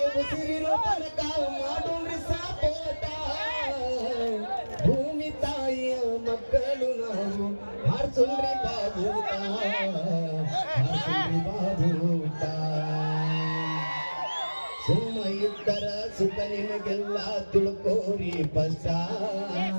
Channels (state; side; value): inverted; both; correlation -1.00